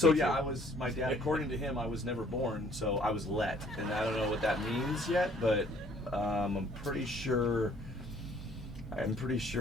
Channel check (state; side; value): normal; both; correlation 0.59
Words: my dad, according to him, I was never born, so I was let. And I don't know what that means yet, but I'm pretty sure